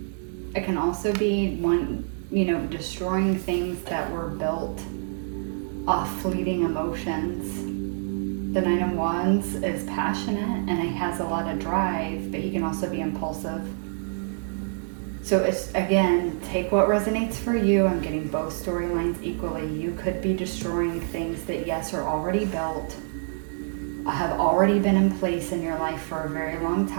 It can also be destroying things that were built off fleeting emotions. The Knight of Wands is passionate and he has a lot of drive, but he can also be impulsive. So it's, again, take what resonates for you. I'm getting both storylines equally. You could be destroying things that, yes, are already built, have already been in place in your life for a very long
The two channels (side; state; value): left; silent; 61 dB below the other